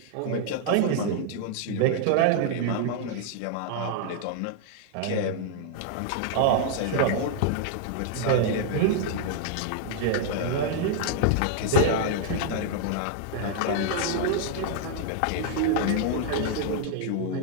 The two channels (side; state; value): both; different; correlation -0.01